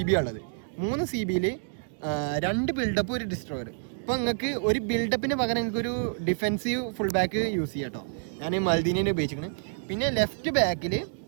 ഉള്ളത്. 3 CB 2 ബിൽഡപ്പ് ഒരു ഡിസ്ട്രോയർ. ഇപ്പോൾ നിങ്ങൾക്ക് ഒരു ബിൽഡപ്പിന് പകരം നിങ്ങൾക്ക് ഒരു ഡിഫെൻസീവ് ഫുൾ ബാക്ക് യൂസ് ചെയ്യാം കേട്ടോ. ഞാൻ മൽദീനെ ഉപയോഗിച്ചിരിക്കുന്നത്. പിന്നെ ലെഫ്റ്റ് ബാക്കിൽ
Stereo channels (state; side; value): silent; left; digital silence